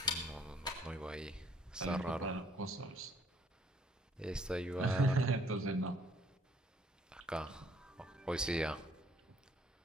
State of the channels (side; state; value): both; normal; correlation 0.64